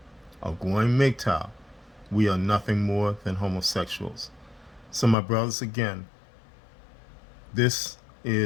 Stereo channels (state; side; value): drops out; right; at 5.2 s